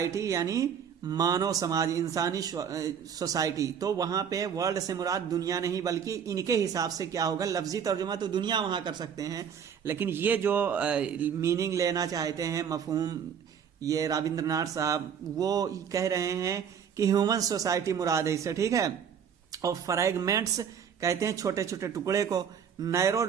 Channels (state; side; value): quieter; left; 7.8 dB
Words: यानी मानव समाज, इंसानी सोसाइटी। तो वहां पे वर्ल्ड से मुराद दुनिया नहीं, बल्कि इनके हिसाब से क्या होगा, लफ्जी तर्जुमा तो दुनिया वहां कर सकते हैं, लेकिन ये जो मीनिंग लेना चाहते हैं, मफहूम, ये रविंद्रनाथ साहब वो कह रहे हैं कि ह्यूमन सोसाइटी मुराद है इससे, ठीक है। और फ्रैगमेंट्स कहते हैं छोटे छोटे टुकड़े को। नैरो